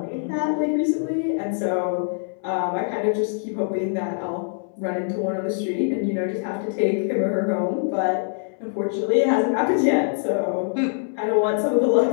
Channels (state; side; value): silent; right; 63 dB below the other